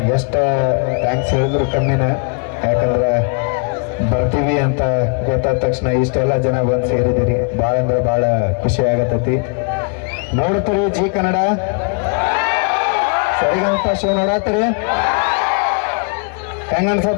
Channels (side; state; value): right; quieter; 38.0 dB